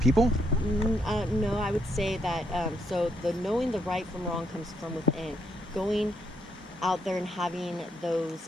No, I would say that, so the knowing the right from wrong comes from within. Going out there and having those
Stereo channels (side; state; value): both; normal; correlation 0.75